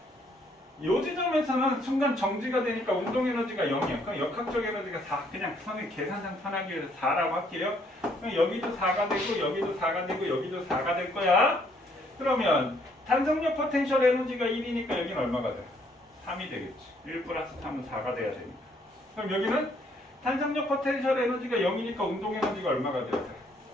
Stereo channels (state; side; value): normal; both; correlation 0.67